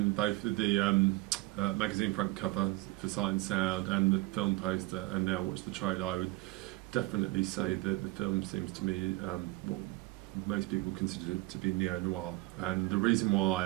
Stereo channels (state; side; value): quieter; left; 20.5 dB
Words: both the magazine front cover for Sight and Sound and the film poster, and now watch the trailer, I would definitely say that the film seems to me what most people consider to be neo-noir. And the reason why